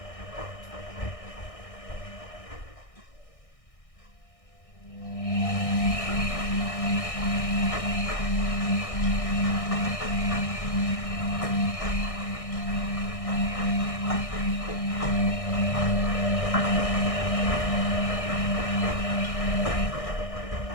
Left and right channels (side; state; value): right; late; 1.6 ms